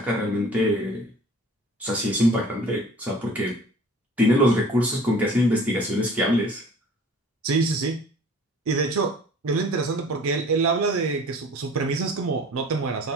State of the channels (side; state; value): both; normal; correlation 0.47